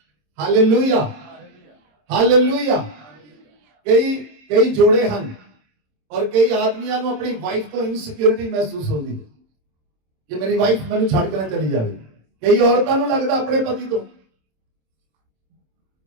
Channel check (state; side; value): late; left; 27 ms